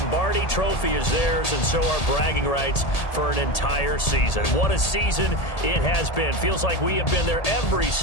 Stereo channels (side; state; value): right; late; 1.8 ms